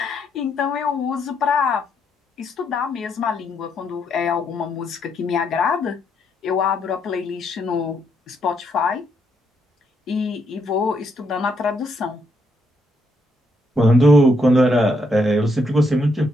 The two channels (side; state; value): both; normal; correlation 0.76